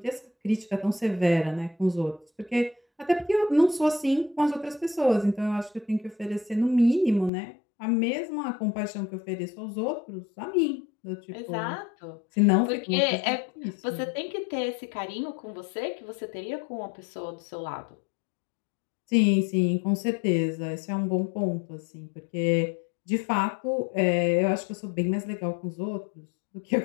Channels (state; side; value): drops out; right; at 7.3 s